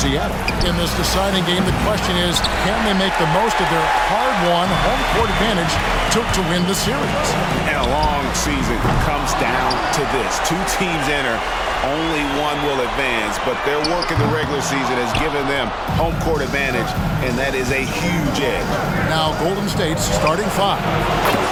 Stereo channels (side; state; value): both; identical; correlation 1.00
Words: In this deciding game, the question is, can they make the most of their hard-won home court advantage to win the series? And a long season comes down to this. Two teams enter, only one will advance, but their work in the regular season has given them home court advantage, and that is a huge edge. Now Golden State's starting five.